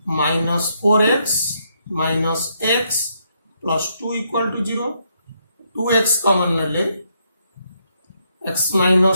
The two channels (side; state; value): both; inverted; correlation -0.76